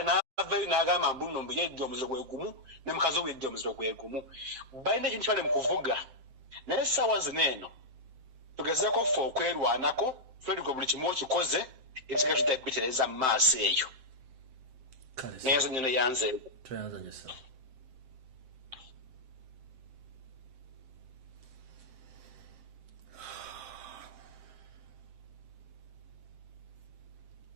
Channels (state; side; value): late; left; 7.7 ms